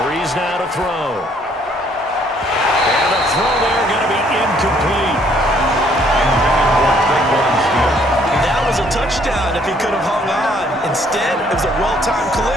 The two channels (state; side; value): normal; both; correlation 0.64